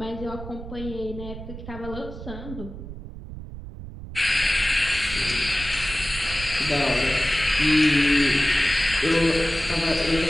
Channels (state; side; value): noise; right; rumble, 11 dB below the sound